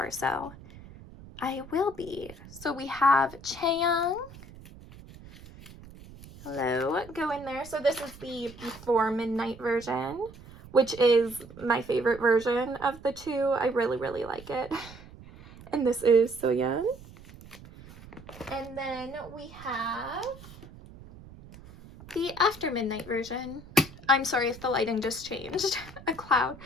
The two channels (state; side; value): noise; right; rumble, 18 dB below the sound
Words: so I will be. So we have Chaeyoung. Hello, go in there. So this is the Before Midnight version, which is my favorite version of the two. I really, really like it. And this is Soyeon. And then we have the After Midnight version. I'm sorry if the lighting just changed. A cloud.